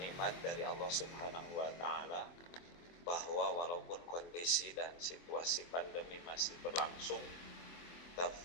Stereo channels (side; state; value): right; late; 23 ms